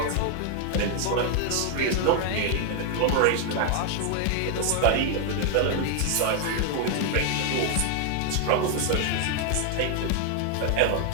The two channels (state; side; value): different; both; correlation 0.00